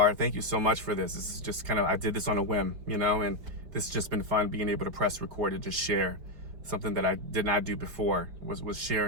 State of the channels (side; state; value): left; late; 5.2 ms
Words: Thank you so much for this. This is just I did this on a whim, and this has just been fun, being able to press record and just share something that I did not do before, was share